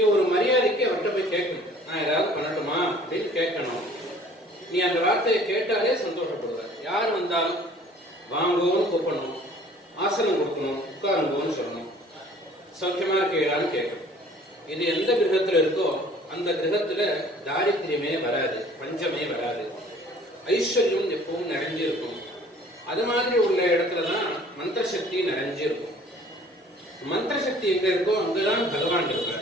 ஒரு மரியாதைக்கு அவர்கிட்ட போய் கேட்கணும். நான் ஏதாவது பண்ணட்டுமா அப்படின்னு கேட்கணும். நீ அந்த வார்த்தையை கேட்டாலே சந்தோஷப்படுவ. யார் வந்தாலும் வாங்குவோன்னு கூப்பிடணும், ஆசனம் கொடுக்கணும், உட்காருங்கோன்னு சொல்லணும், சௌக்கியமா இருக்கீங்களான்னு கேட்கணும். இது எந்த கிரகத்துல இருக்கோ அந்த கிரகத்துல தாரித்திரியமே வராது, பஞ்சமே வராது, ஐஸ்வர்யம் எப்பவும் நிறைஞ்சு இருக்கும். அது மாதிரி உள்ள இடத்துலதான் மந்திர சக்தி நிறைஞ்சு இருக்கும். மந்திர சக்தி எங்க இருக்கோ அங்கதான் பகவான்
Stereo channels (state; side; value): normal; both; correlation 0.52